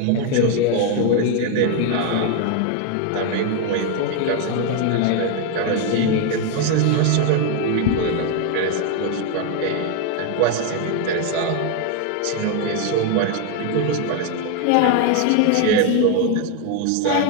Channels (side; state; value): both; different; correlation 0.01